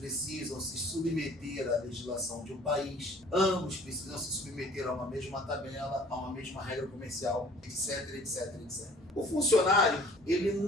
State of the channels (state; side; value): normal; both; correlation 0.53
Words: se submeter à legislação de um país, ambos precisam se submeter a uma mesma tabela, a uma mesma regra comercial, etc, etc, etc. O funcionário, ele